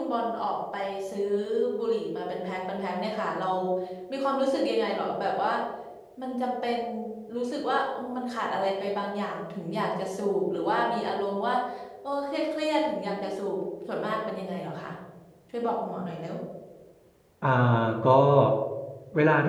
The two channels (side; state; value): both; identical; correlation 1.00